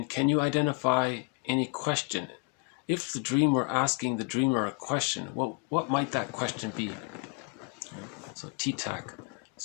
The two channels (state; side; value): quieter; right; 31.8 dB